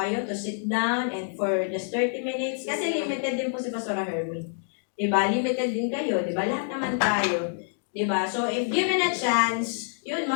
to sit down and for just 30 minutes, kasi limited din po si Pastor Hermie. Diba? Limited din kayo. Diba? Lahat naman tayo. Diba? So, if given a chance, yun,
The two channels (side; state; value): right; silent; digital silence